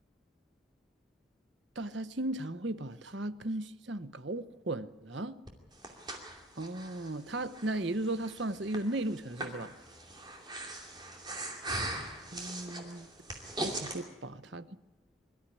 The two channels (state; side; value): normal; both; correlation 0.42